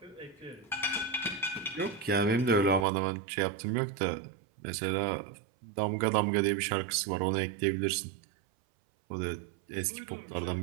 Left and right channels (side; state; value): left; drops out; at 2.9 s